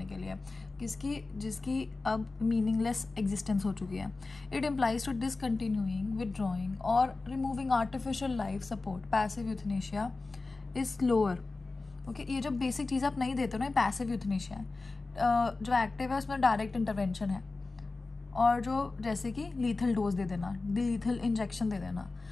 के लिए, जिसकी अब मीनिंगलेस एग्जिस्टेंस हो चुकी है. It implies to discontinuing, withdrawing और removing artificial life support. Passive euthanasia is slower. Okay, ये जो बेसिक चीज़ आप नहीं देते हो ना, पैसिव यूथनेशिया है. जो एक्टिव है उसमें डायरेक्ट इंटरवेंशन है, और जो जैसे कि लीथल डोज दे देना, लीथल इंजेक्शन दे देना.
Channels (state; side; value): quieter; right; 3.6 dB